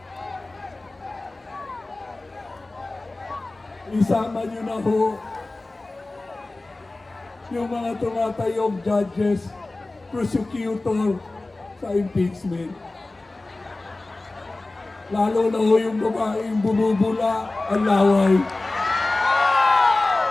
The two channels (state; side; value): quieter; right; 3.0 dB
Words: Isama niyo na ho yung mga tumatayong judges, prosecutor sa impeachment. Lalo na ho yung babaeng bumubula ang laway.